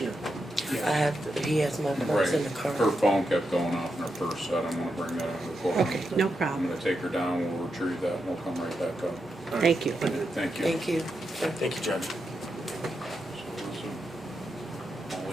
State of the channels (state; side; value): normal; both; correlation 0.86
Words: I have to, he has my purse in the car. Her phone kept going off in her purse, so I don't wanna bring that into the court. Okay, no I'm problem. gonna take her down, we'll retrieve that, and we'll come right back up. Thank you. Thank you. Thank you. Thank you, Judge. I'll